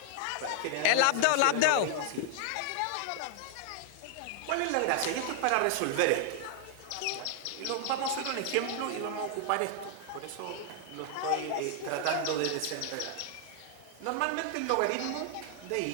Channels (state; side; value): different; both; correlation 0.00